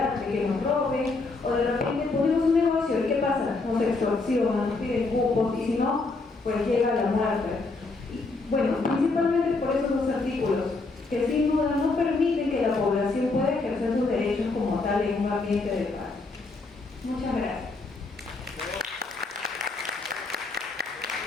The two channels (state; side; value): quieter; right; 3.6 dB